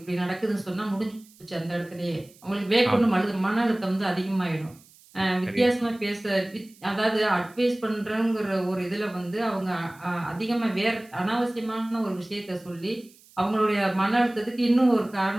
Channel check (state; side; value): noise; right; hiss, 26 dB below the sound